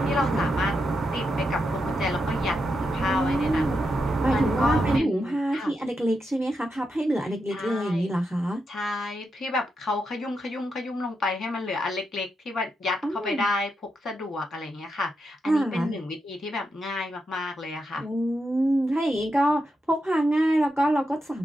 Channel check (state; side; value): normal; both; correlation 0.85